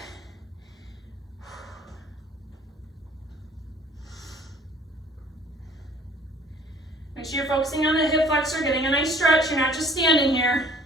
Make sure you're focusing on the hip flexor, getting a nice stretch. You're not just standing here.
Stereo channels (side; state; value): both; normal; correlation 0.53